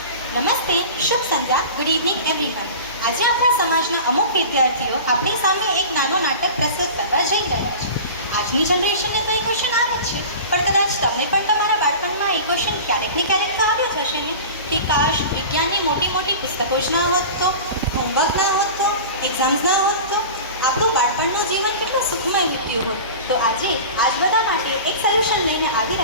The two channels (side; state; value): both; inverted; correlation -0.35